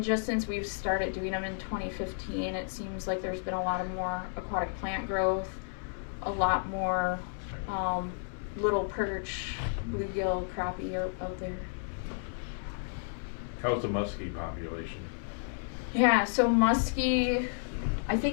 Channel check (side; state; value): right; silent; 56 dB below the other